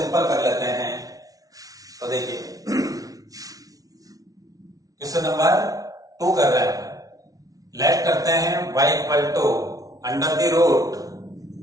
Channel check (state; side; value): late; left; 0.18 ms